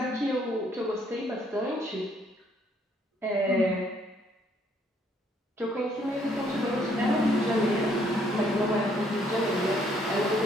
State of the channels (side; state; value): both; normal; correlation 0.67